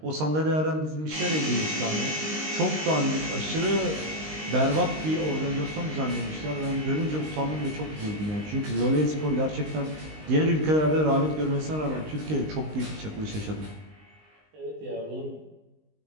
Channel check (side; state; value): left; late; 19 ms